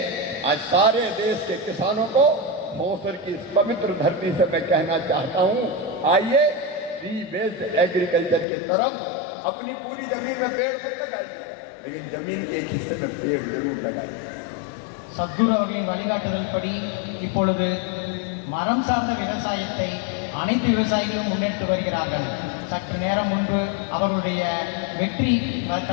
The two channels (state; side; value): drops out; right; at 8.5 s